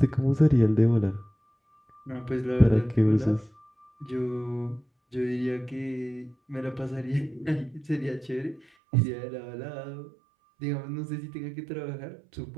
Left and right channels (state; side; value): drops out; left; at 8.7 s